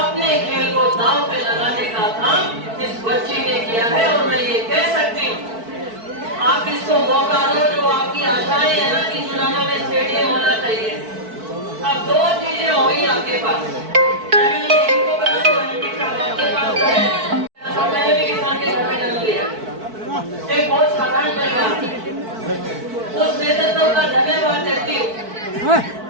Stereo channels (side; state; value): left; late; 4.5 ms